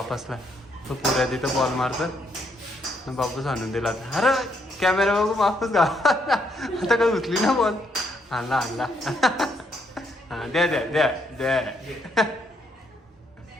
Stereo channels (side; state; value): both; normal; correlation 0.74